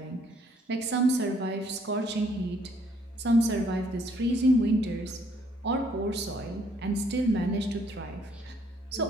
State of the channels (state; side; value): normal; both; correlation 0.66